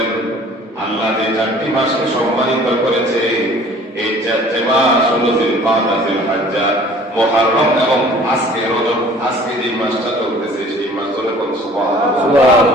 আল্লাহ যে 4টি মাসকে সম্মানিত করেছে এই 4টি মাস হলো জিলকাদা, জিলহজ্জা, মুহররম এবং আজকে রজব। আজকে যে মাসটা চলতেছে সেই মাস হলো সুবহানাল্লাহ।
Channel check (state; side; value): normal; both; correlation 0.50